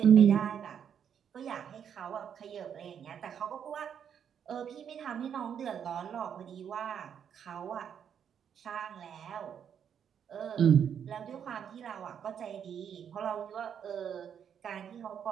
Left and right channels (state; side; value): quieter; left; 8.2 dB